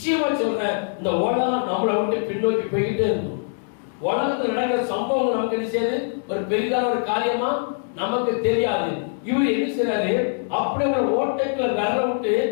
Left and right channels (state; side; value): silent; right; digital silence